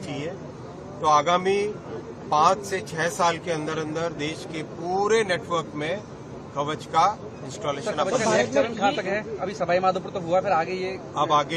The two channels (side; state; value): both; identical; correlation 1.00